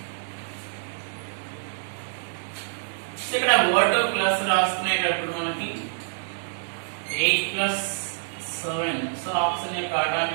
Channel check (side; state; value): left; silent; 61 dB below the other